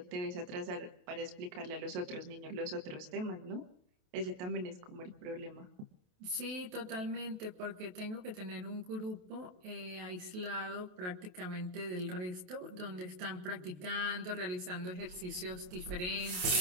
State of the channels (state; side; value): late; left; 28 ms